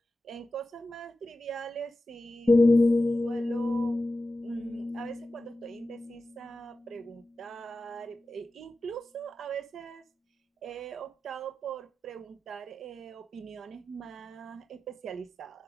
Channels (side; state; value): both; normal; correlation 0.93